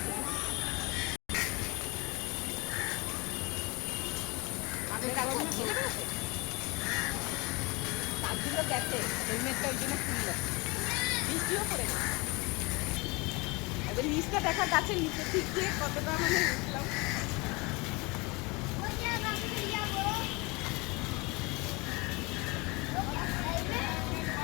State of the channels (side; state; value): right; quieter; 26.4 dB